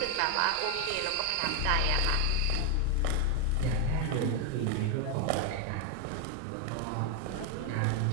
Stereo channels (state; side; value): different; both; correlation 0.01